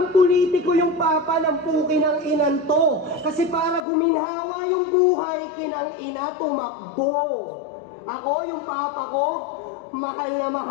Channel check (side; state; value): right; drops out; at 3.8 s